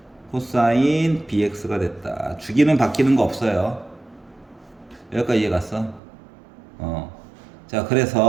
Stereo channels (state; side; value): drops out; left; at 6.0 s